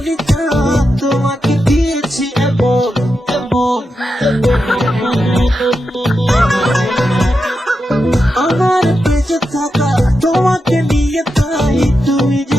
তোমাকে দিয়েছি এমন এমন আমার বেঁচে থাকা তোমাকে নিয়ে যাই তুমি যে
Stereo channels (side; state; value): both; normal; correlation 0.88